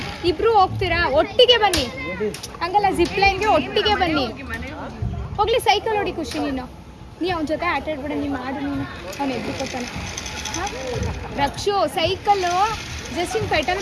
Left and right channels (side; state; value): both; identical; correlation 1.00